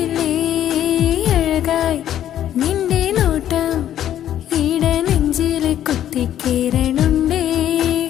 അഴകായി നിന്റെ നോട്ടം ഇട നെഞ്ചിൽ കുത്തിക്കേറണുണ്ടേ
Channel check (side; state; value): right; quieter; 11.3 dB